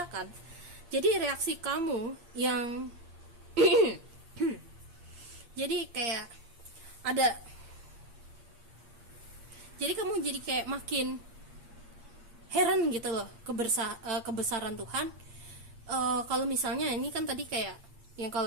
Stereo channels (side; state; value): left; late; 8.6 ms